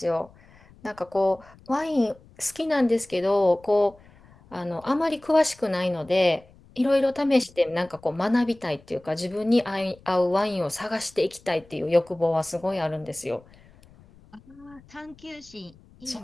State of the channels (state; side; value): noise; left; rumble, 26 dB below the sound